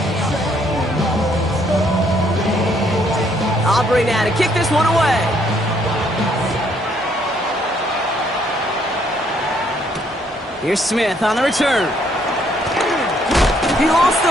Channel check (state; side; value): normal; both; correlation 0.68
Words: Aubrey now to kick this one away. Here's Smith on the return. He lost